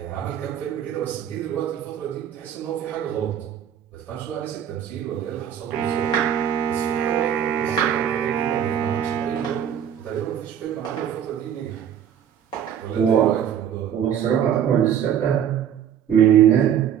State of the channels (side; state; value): left; quieter; 9.3 dB